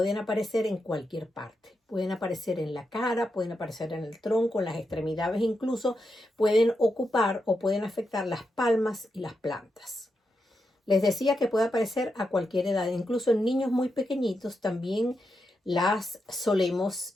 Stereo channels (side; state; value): both; normal; correlation 0.85